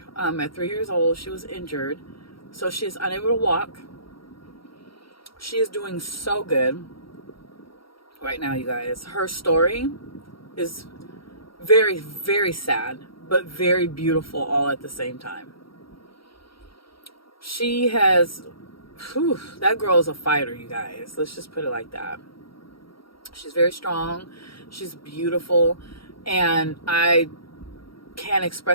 at 3 years old. She was injured, so she is unable to walk. She is doing so good right now, you guys. Her story is very, very sad, but very beautiful all at the same time. She has, that girl is a fighter, you guys. Let's just put it like that. She's very strong. She's beautiful. And I can't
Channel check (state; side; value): late; right; 0.74 ms